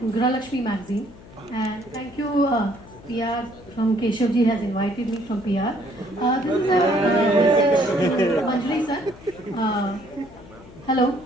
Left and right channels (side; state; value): left; noise; hum, 20 dB below the sound